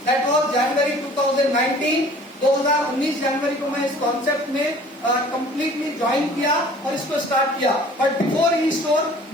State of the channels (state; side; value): normal; both; correlation 0.50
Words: दैट वाज जनवरी 2019। 2019 जनवरी को मैं इस कॉन्सेप्ट में कंप्लीटली ज्वाइन किया और इसको स्टार्ट किया। बट बिफोर ई स्टोर